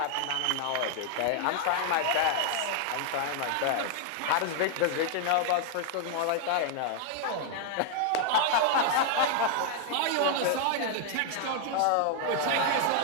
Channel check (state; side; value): different; both; correlation 0.00